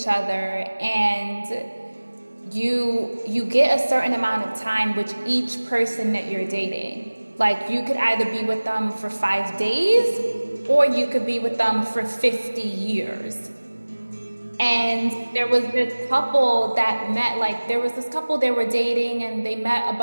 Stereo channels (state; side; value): inverted; both; correlation -1.00